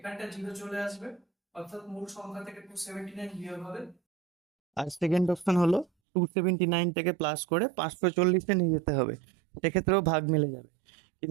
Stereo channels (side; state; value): left; drops out; at 5.9 s